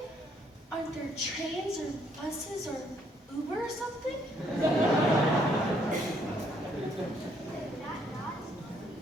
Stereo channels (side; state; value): both; normal; correlation 0.69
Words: Aren't there trains or buses or Uber or something?